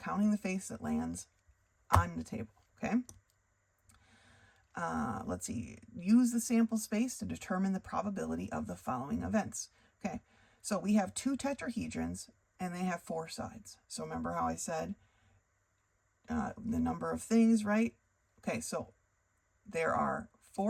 the face that lands on the table, okay? Let's see, use the sample space to determine the probability of the following events. Okay, so we have 2 tetrahedrons and they have 4 sides. So remember how I said the number of things, right? Okay, so there are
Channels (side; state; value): both; identical; correlation 1.00